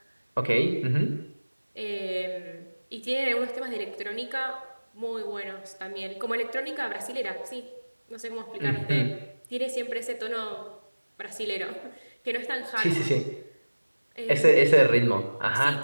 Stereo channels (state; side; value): inverted; both; correlation -1.00